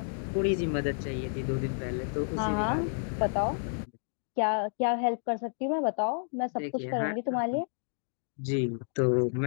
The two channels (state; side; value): silent; right; digital silence